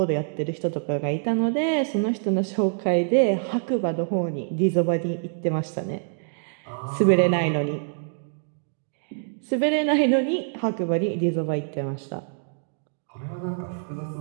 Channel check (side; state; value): left; silent; digital silence